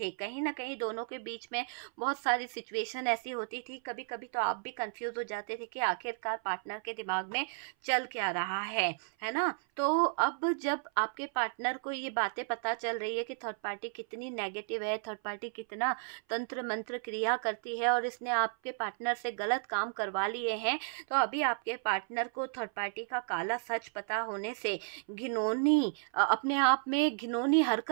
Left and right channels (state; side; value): silent; left; 55 dB below the other